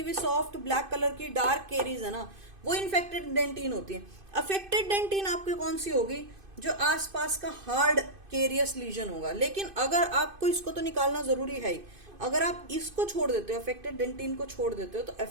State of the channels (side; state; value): left; late; 2.5 ms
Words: भी सॉफ्ट ब्लैक कलर की डार्क केरीज है ना, वो इन्फेक्टेड डेंटिन होती है। अफेक्टेड डेंटिन आपकी कौन सी होगी, जो आसपास का हार्ड केरियस लीजन होगा। लेकिन अगर आपको इसको तो निकालना जरूरी है ही, अगर आप इसको छोड़ देते हो, अफेक्टेड डेंटिन को छोड़ देते हो, तो